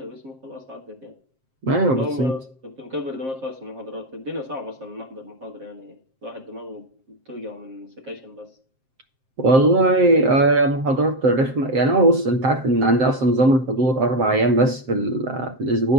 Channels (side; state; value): left; late; 7.6 ms